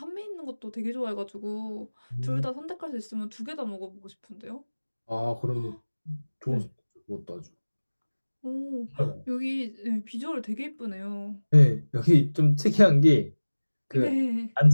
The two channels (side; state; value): both; inverted; correlation -1.00